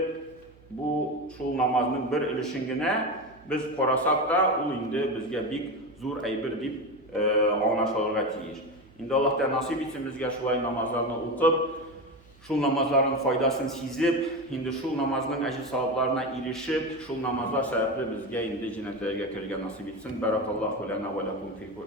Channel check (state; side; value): noise; right; hum, 26 dB below the sound